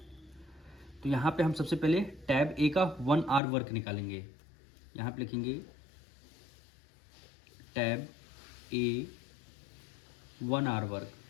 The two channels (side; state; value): right; drops out; at 3.4 s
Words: तो यहाँ पे हम सबसे पहले टैब ए का 1 आवर वर्क निकालेंगे। यहाँ पे लिखेंगे tab A 1 hour work,